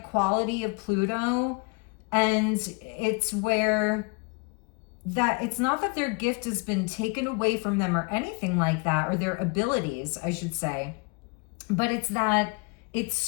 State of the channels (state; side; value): quieter; right; 31.4 dB